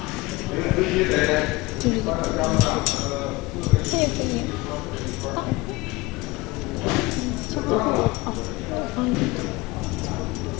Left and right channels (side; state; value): right; quieter; 21.6 dB